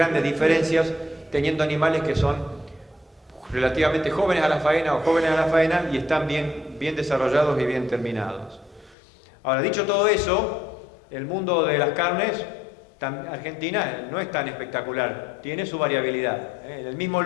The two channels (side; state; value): right; drops out; at 9.0 s